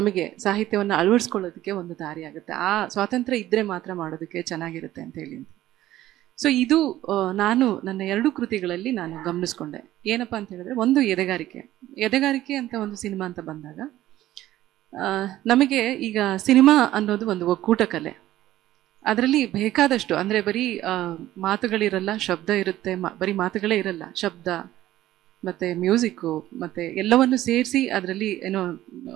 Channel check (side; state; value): left; quieter; 14.4 dB